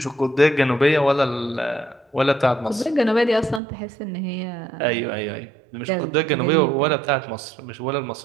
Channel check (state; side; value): drops out; left; at 3.6 s